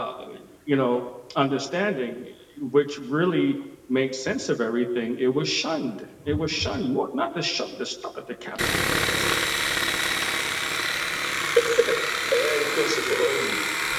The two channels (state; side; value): identical; both; correlation 1.00